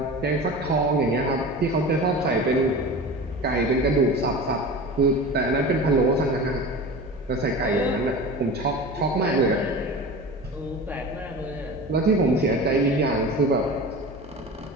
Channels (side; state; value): both; normal; correlation 0.33